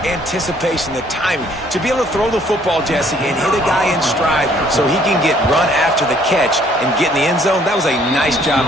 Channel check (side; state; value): both; normal; correlation 0.62